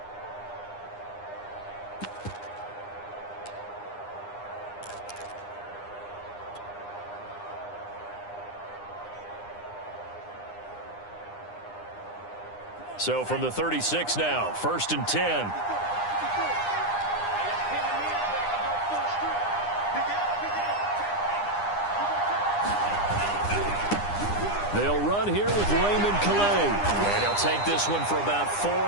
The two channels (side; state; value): right; late; 9.8 ms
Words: So from the 36 now, 1st and 10. They'll run here with Raymond Calais. And he'll take this one for about 4